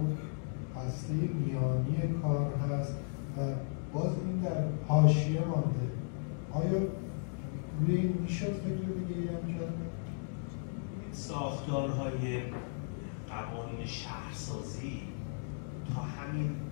هسته میانی کار هست و باز این در حاشیه مانده. آیا روی این میشد فکر دیگه هم کرد؟ ساختارهای قوانین شهرسازی تا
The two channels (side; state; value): right; silent; digital silence